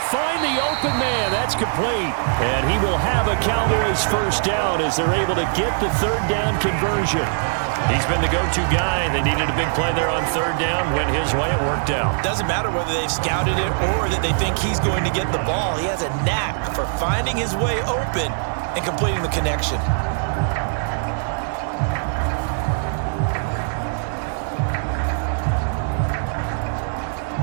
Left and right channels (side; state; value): left; silent; digital silence